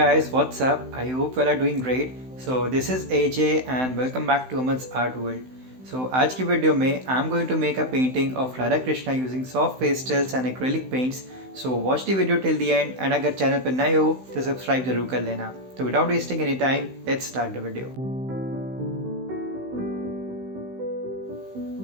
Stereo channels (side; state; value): left; late; 16 ms